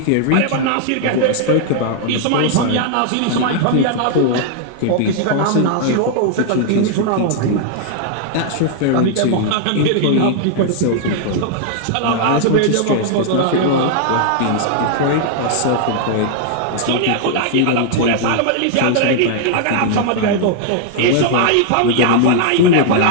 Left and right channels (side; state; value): both; different; correlation -0.01